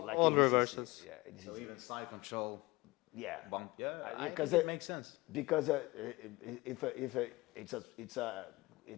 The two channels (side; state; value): right; quieter; 21.9 dB